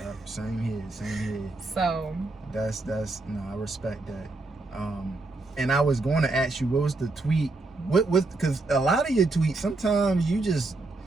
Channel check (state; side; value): quieter; left; 3.2 dB